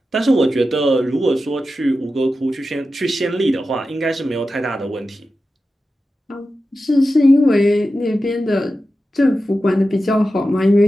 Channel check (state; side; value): normal; both; correlation 0.92